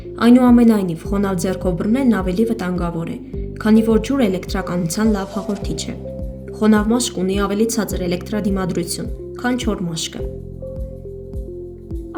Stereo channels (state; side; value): identical; both; correlation 1.00